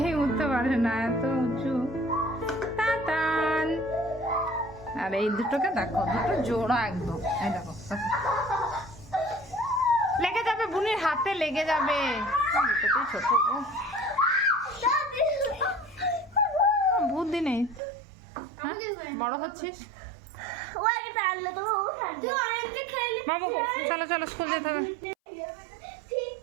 উঠতে পারে না, এত উঁচু। তাতান আর এই দুটোকে দেখো, দুটো জোড়া একদম। এই দেখো লেগে যাবে, বুনির হাতে লেগে যাবে। দুটোতেই ছোট গো, বুদ্ধি নেই। হ্যাঁ? বড় হচ্ছিস বাবু, চলো চলো স্কুল যেতে হবে।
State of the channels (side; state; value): left; drops out; at 17.8 s